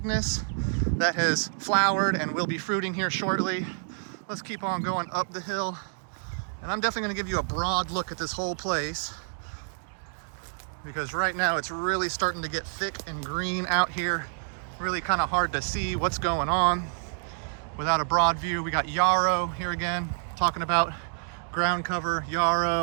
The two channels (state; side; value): silent; left; digital silence